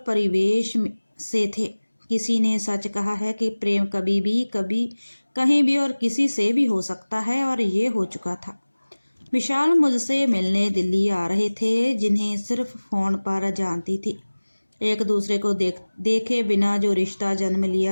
परिवेश से थे। किसी ने सच कहा है कि प्रेम कभी कहीं भी और किसी से भी हो सकता है, और ये हो चुका था। विशाल मुझसे मिलने दिल्ली आ रहे थे, जिन्हें सिर्फ फोन पर जानती थी। एक दूसरे को देखे बिना जो रिश्ता जन्म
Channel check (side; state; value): both; inverted; correlation -1.00